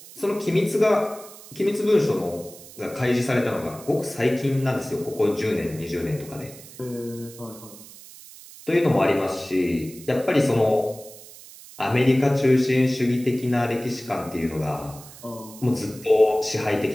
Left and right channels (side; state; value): right; noise; hiss, 18 dB below the sound